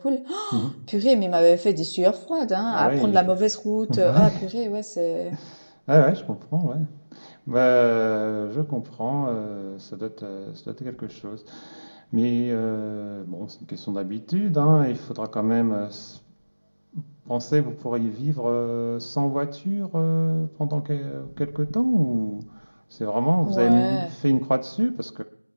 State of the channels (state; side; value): inverted; both; correlation -1.00